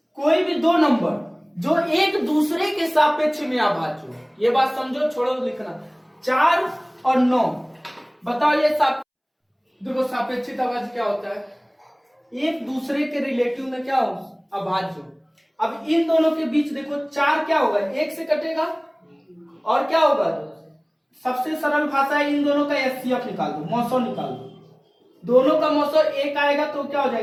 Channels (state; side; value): identical; both; correlation 1.00